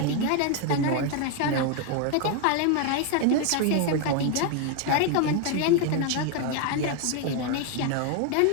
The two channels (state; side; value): different; both; correlation 0.01